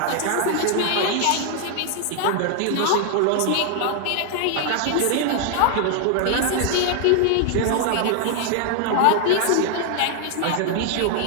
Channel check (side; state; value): both; different; correlation 0.00